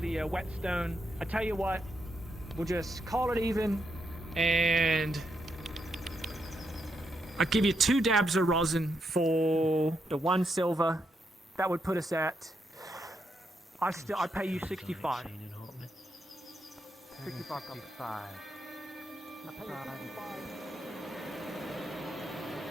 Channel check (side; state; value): both; normal; correlation 0.81